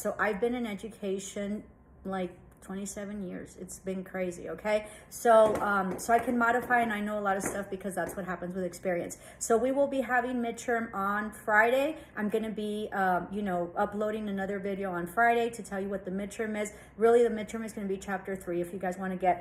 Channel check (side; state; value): both; identical; correlation 1.00